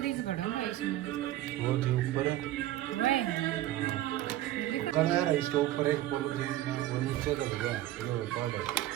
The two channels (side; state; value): left; quieter; 14.4 dB